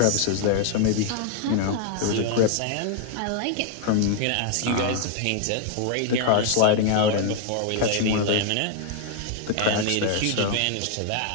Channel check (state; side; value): different; both; correlation 0.00